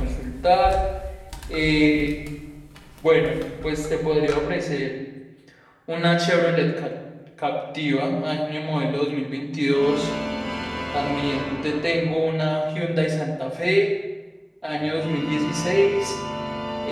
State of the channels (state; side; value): identical; both; correlation 1.00